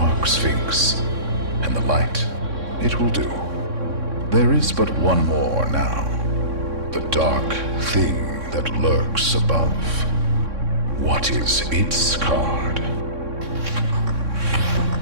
sphinx and the light. It will do. There is but one more now. The dark thing that lurks above. What is its card?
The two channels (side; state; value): left; late; 3.6 ms